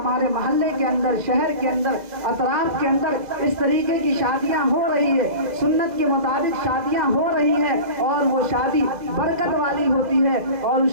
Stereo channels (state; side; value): late; left; 2.0 ms